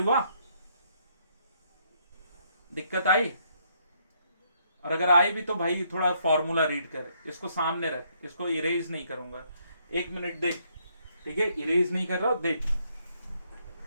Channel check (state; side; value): inverted; both; correlation -0.71